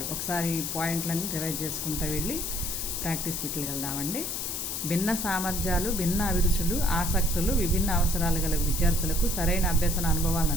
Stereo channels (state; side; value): noise; left; hiss, 3 dB below the sound